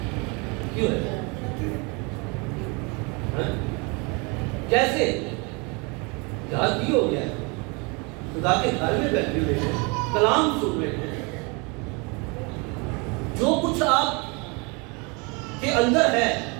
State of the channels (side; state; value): left; quieter; 30.1 dB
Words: کیوں ہے؟ کیسے؟ یاد کی ہو گیا ہے؟ خدا کے گھر میں بیٹھے ہوئے ہیں، کلام سن رہے ہیں. جو کچھ آپ کے اندر ہے،